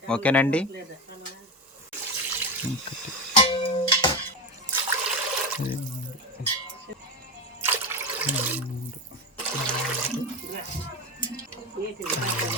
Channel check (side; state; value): both; normal; correlation 0.18